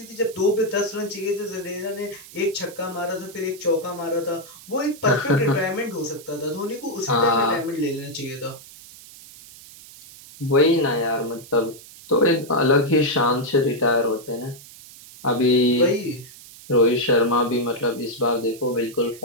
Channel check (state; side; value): noise; right; hiss, 19 dB below the sound